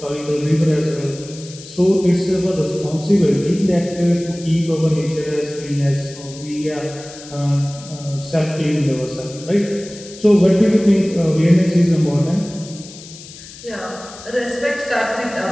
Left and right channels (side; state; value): left; noise; hiss, 17 dB below the sound